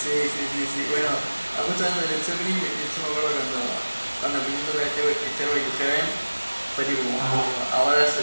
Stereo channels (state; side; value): inverted; both; correlation -1.00